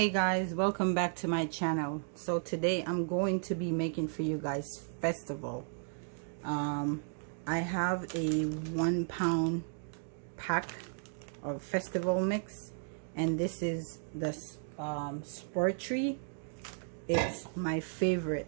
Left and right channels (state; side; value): silent; left; digital silence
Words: guys, welcome back to my channel. So today I'm going to be making for you guys Fistival. I have a 1 pound pack of Fistival mix, and this is the Spur tree. It's my